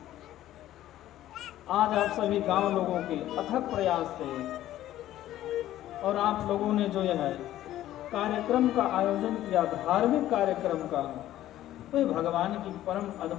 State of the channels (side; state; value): right; quieter; 13.5 dB